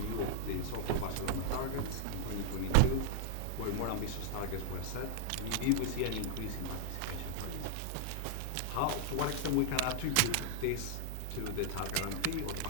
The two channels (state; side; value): different; both; correlation 0.00